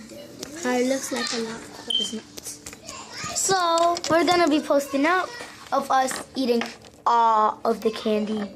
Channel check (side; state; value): both; identical; correlation 1.00